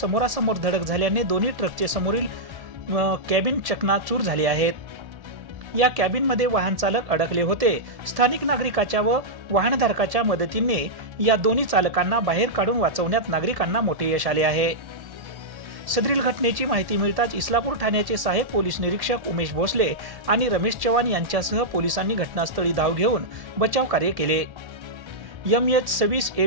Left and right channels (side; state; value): left; late; 1.8 ms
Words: धडक झाल्याने दोन्ही ट्रकचे समोरील कॅबिन चकनाचूर झाले आहेत। या कॅबिनमध्ये वाहन चालक अडकले होते। स्थानिक नागरिकाच्या व वाहनधारकाच्या मदतीने या दोन्ही चालकांना बाहेर काढून वाचवण्यात नागरिकांना मोठे यश आले आहे। सदरील घटनेची माहिती मिळताच इस्लापूर ठाण्याचे सहाय्यक पोलीस निरीक्षक उमेश भोसले आणि रमेश चव्हाण यांच्यासह पोलिसांनी घटनास्थळी धाव घेऊन बचाव कार्य केले। MH26